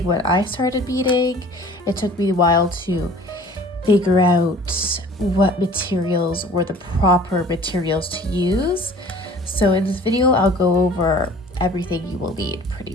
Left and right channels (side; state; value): both; normal; correlation 0.47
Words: when I started beading, it took me a while to figure out what materials were the proper materials to use. So in this video, I'll go over everything you will need